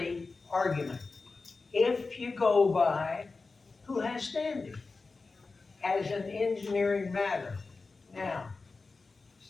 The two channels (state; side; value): quieter; right; 4.0 dB